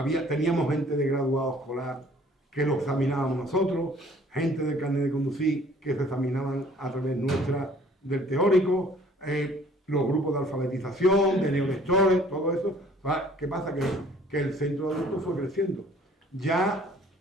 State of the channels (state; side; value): normal; both; correlation 0.55